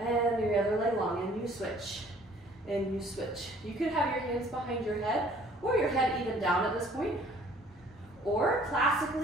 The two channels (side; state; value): both; normal; correlation 0.56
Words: your other leg long, and you switch, and you switch. You could have your hands behind your head or your head even down at this point. Or